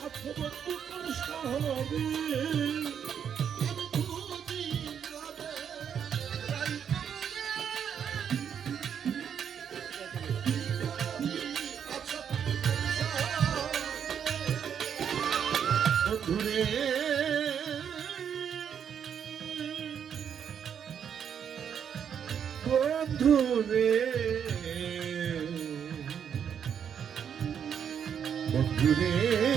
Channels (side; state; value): left; quieter; 8.1 dB